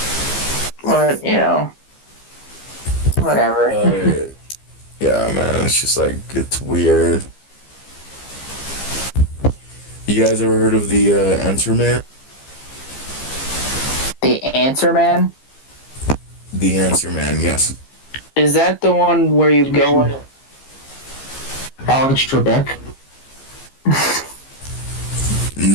But, you know, whatever. Yeah, man, it's just like, it's weird. You guys ever heard of the Answer Man? The Answer Man? The Answer Man, yes. Is that the one where you go in? Alex Trebek?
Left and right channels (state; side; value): late; right; 15 ms